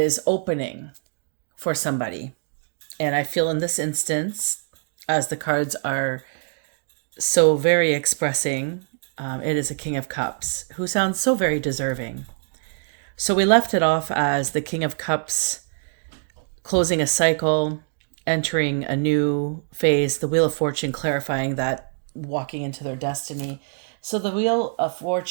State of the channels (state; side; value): silent; left; 62 dB below the other